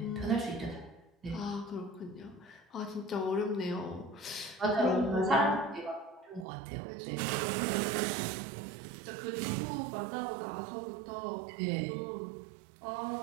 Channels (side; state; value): left; drops out; at 6.5 s